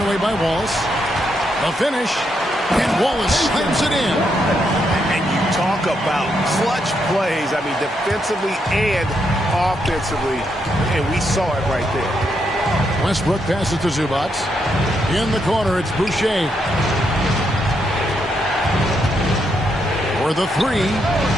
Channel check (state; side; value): normal; both; correlation 0.79